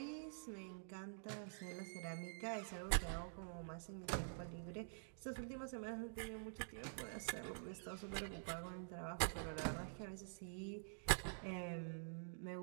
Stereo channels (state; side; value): silent; left; digital silence